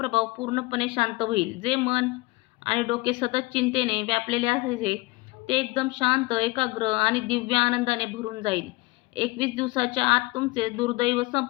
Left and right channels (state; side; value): quieter; right; 22.8 dB